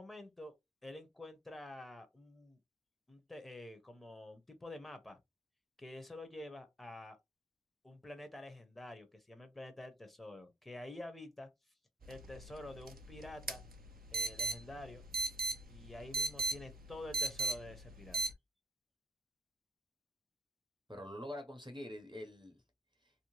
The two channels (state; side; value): normal; both; correlation 0.60